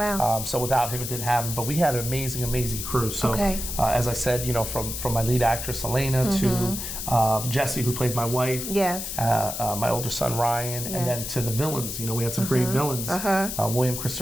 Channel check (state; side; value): noise; left; hiss, 5 dB below the sound